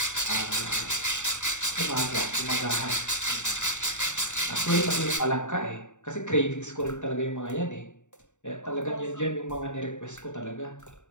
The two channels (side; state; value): right; late; 0.84 ms